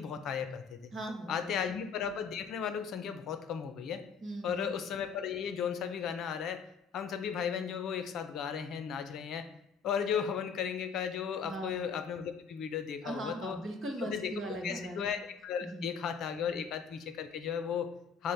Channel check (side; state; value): right; quieter; 6.1 dB